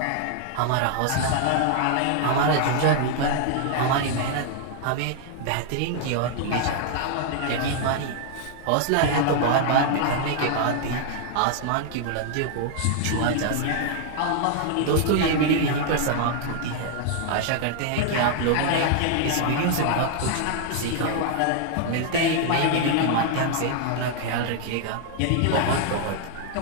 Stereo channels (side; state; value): both; different; correlation 0.00